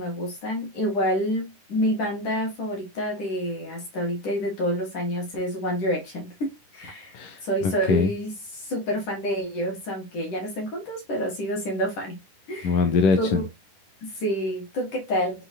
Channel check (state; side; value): late; right; 10 ms